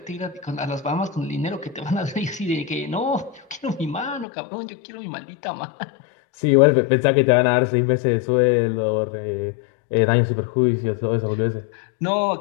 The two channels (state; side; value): drops out; right; at 4.2 s